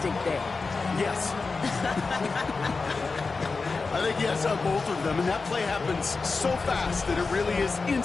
there? Yes. I think yes on both of them, and that play happens so fast that it really is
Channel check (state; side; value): quieter; right; 4.2 dB